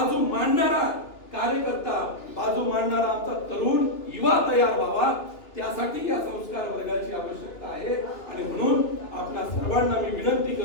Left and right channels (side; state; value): right; late; 3.0 ms